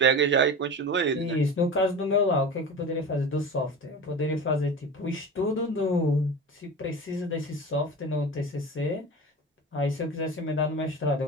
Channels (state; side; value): normal; both; correlation 0.31